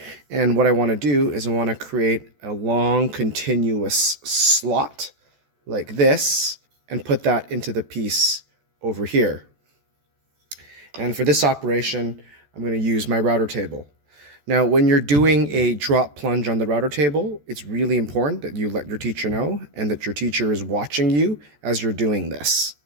and what I want to do is I want to create a long continuous slot like this and put that into the piece over here. And for this operation I'm going to use my router table. Now, when you're doing a drop plunge on the router table, it's really important that you let your teacher know and that your teacher is watching you as you're doing this.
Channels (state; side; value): late; left; 14 ms